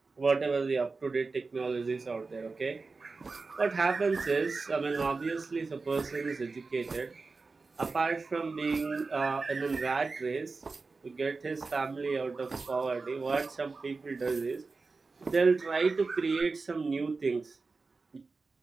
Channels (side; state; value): left; quieter; 4.1 dB